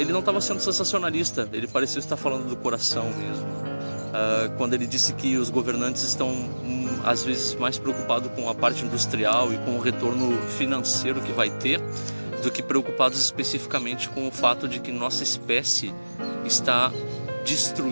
não estava sendo sensacionalista, ele parecia estar falando do coração mesmo. Quando ele disse que os governantes estão às vezes mais preocupados com a parte industrial e com o retorno financeiro que vai ter, do que preocupados especificamente com o fato de que nossa espécie está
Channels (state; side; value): inverted; both; correlation -1.00